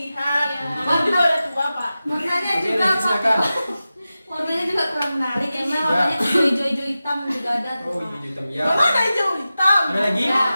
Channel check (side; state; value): both; inverted; correlation -0.94